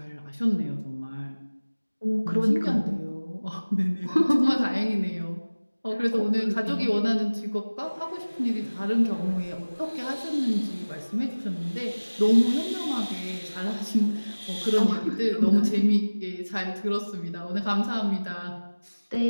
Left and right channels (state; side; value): inverted; both; correlation -1.00